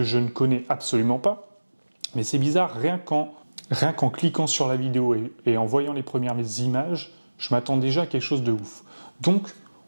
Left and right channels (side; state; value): both; inverted; correlation -1.00